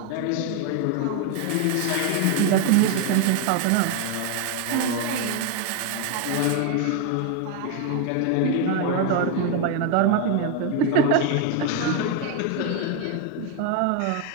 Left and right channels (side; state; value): both; different; correlation 0.01